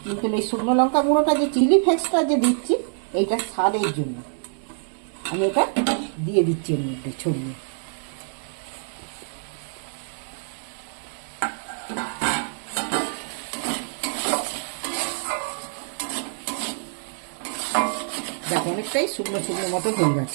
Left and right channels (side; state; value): left; silent; digital silence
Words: কিন্তু এই শুকনো লঙ্কা গুঁড়োটা যে চিলি ফ্লেক্সটা যে দিচ্ছি এইটা স্বাদের জন্য আমি এটা দিয়ে দিচ্ছি এর মধ্যে ছড়িয়ে। দেখো অনেকটাই শুকনো শুকনো মতো হয়ে